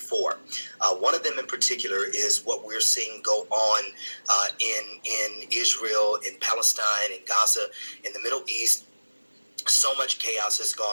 One of them in particular is what we're seeing go on in Israel, in Palestine, in Gaza, in the Middle East. So much chaos has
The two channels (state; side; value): inverted; both; correlation -1.00